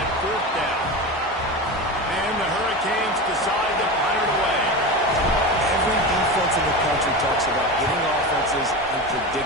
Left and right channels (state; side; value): normal; both; correlation 0.25